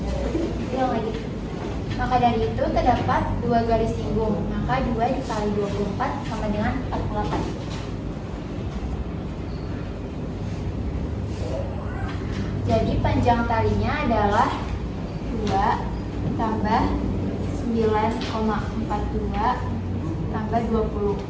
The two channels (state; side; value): identical; both; correlation 1.00